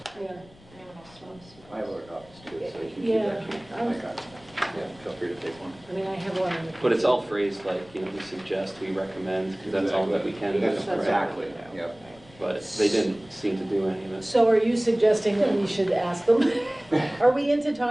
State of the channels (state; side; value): noise; left; rumble, 25 dB below the sound